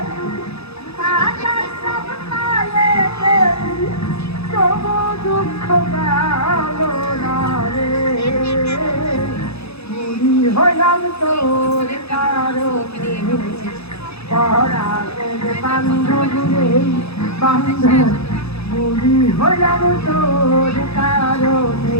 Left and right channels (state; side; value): late; right; 0.79 ms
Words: পাতার সব তালেতে তবু দুঃখ গেল না রে মুড়ি হলাম তোর কারণে পরাগের বান্ধব রে বান্ধব মুড়ি হলাম তোর কারণে